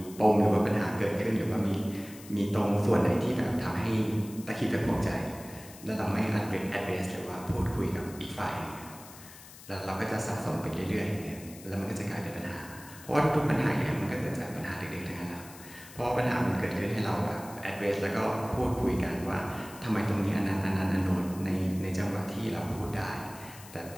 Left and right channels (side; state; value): left; noise; hiss, 18 dB below the sound